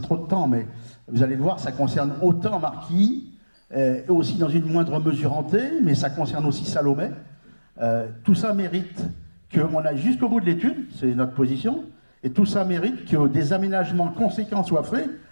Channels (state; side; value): inverted; both; correlation -1.00